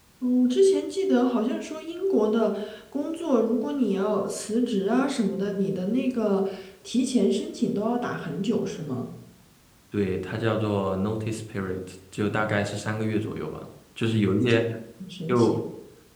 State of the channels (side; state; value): both; identical; correlation 1.00